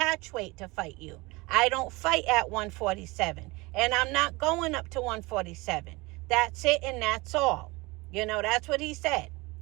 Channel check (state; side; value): quieter; left; 23.7 dB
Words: weight to fight you. I don't fight at 147. And I'm not going up to 147. That's it and that's all. You know, that's what he said.